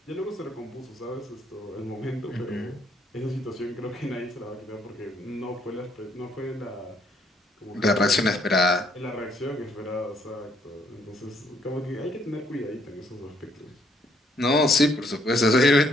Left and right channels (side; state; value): both; normal; correlation 0.68